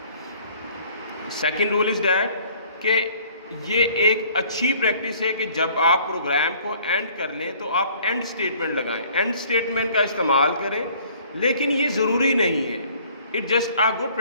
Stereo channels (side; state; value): both; inverted; correlation -0.56